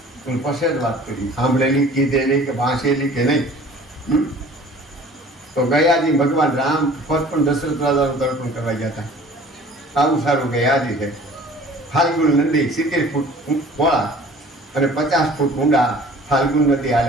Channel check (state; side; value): normal; both; correlation 0.48